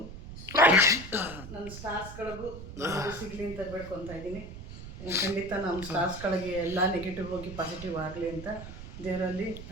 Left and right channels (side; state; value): right; noise; rumble, 11 dB below the sound